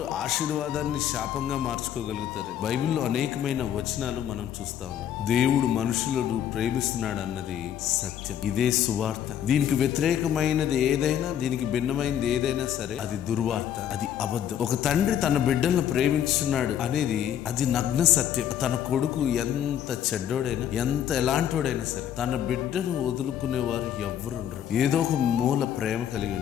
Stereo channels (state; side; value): quieter; right; 10.1 dB